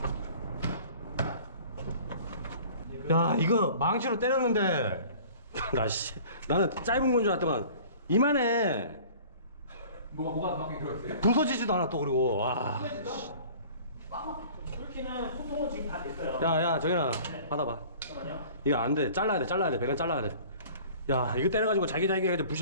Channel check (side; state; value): both; inverted; correlation -0.46